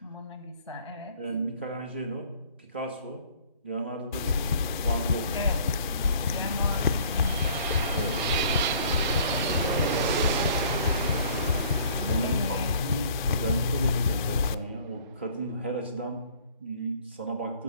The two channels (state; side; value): inverted; both; correlation -0.54